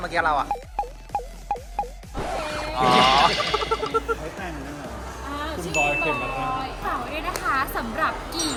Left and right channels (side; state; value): both; identical; correlation 1.00